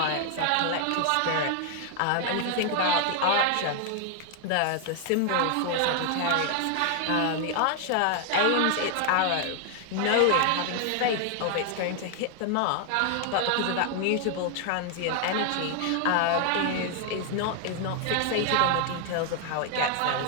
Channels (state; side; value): different; both; correlation 0.00